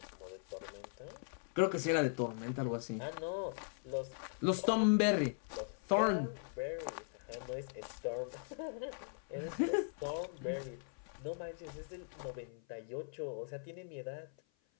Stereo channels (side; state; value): right; silent; 51 dB below the other